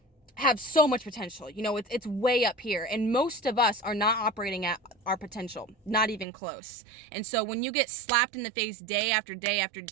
have so much potential. It's way up here, and most of us are not operating at our potential, not even close. And so when you get slapped in the face day after day after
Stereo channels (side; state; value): left; drops out; at 6.2 s